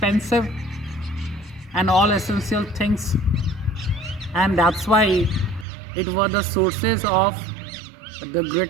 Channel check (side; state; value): left; drops out; at 5.7 s